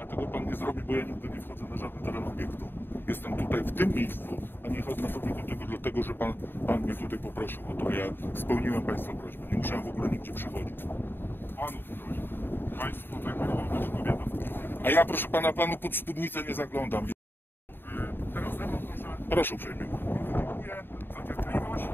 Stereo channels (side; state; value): right; late; 0.099 ms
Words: pan nie zrobi, bo ja nigdy nie wchodzę na żaden teren obiektu. Jestem tutaj w tym miejscu, a nie chodzę na sobie do tego, dlatego że pan mnie tutaj poprosił o to. Ja spełniłem państwa prośbę. Nie musiałem w ogóle nigdzie przychodzić. Panów proszę. Państwo tak mówią, że kobieta. A ja, proszę pana, panu pod spódnicę nie zaglądam. Teraz ze mną proszę. Proszę uprzejmie. Dziękuję za cierpliwość.